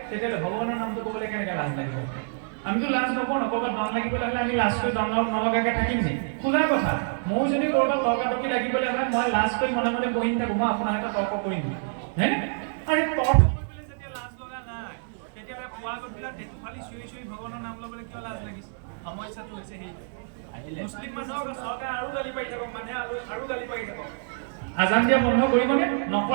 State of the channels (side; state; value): left; silent; digital silence